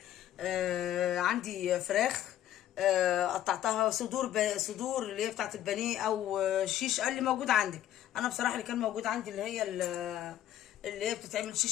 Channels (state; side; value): quieter; right; 12.2 dB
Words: عندي فراخ، قطعتها صدور اللي هي بتاعت البانيه او شيش اللي موجود عندك. انا بصراحه اللي كان موجود عندي اللي هي اللي هي بتتعمل